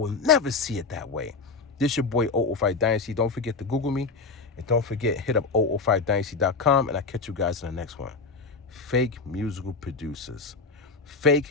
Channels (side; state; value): right; quieter; 4.3 dB